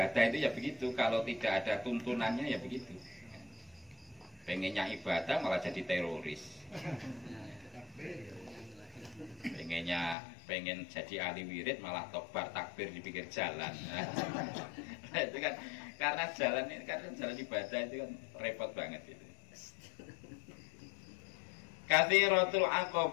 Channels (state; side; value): drops out; right; at 10.2 s